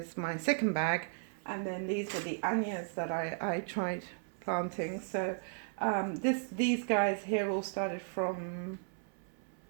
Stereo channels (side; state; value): left; silent; 54 dB below the other